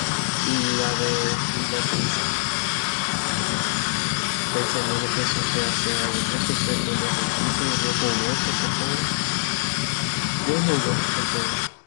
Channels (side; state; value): right; silent; digital silence